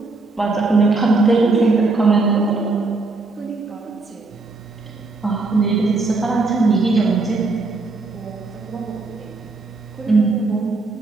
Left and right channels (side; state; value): left; quieter; 3.6 dB